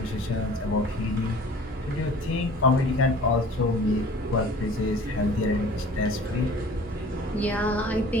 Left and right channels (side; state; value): both; normal; correlation 0.47